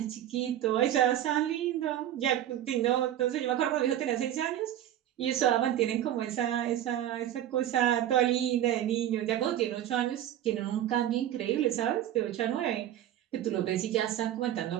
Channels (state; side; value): quieter; left; 11.8 dB